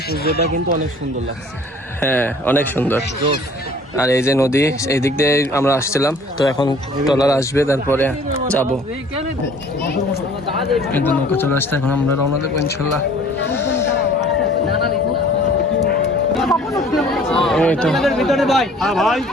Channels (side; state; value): both; normal; correlation 0.52